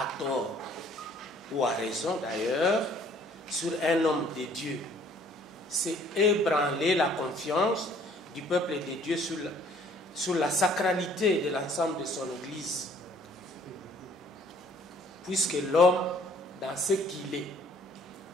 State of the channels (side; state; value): both; normal; correlation 0.58